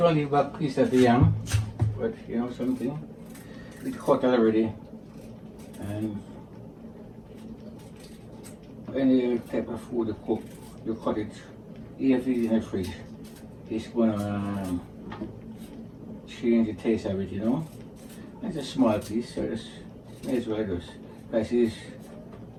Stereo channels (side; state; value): both; identical; correlation 1.00